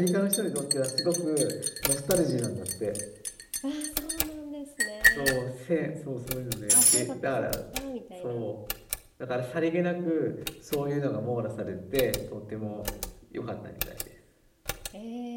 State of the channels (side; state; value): both; identical; correlation 1.00